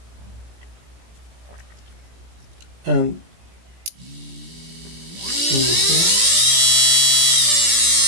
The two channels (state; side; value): late; left; 17 ms